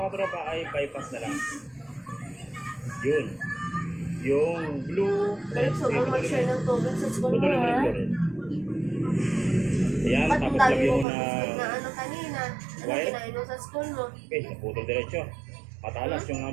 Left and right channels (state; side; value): drops out; left; at 11.1 s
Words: katropa ay bypass na lang. Yun. Yung blue, red, so, kung mag-share ng tubig sa school mo, putulin mo rin ha? blue red. Ayan, Ba't tapos dami lagyan mo mo pa na na ano kanina? Ano wire? kinain mo sa school mo? Okay, naputol diretso. Matalas yung